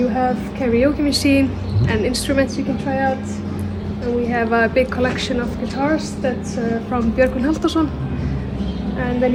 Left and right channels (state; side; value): identical; both; correlation 1.00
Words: have karaoke machine and instruments you can try out. And we have a big collection of guitars that's from Björgvin Halldórsson. And then